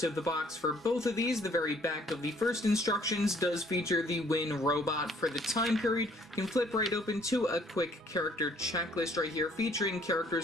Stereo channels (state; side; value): normal; both; correlation 0.61